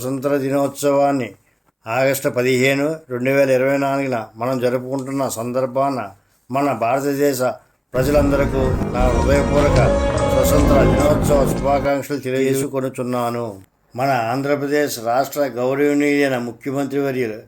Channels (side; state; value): both; identical; correlation 1.00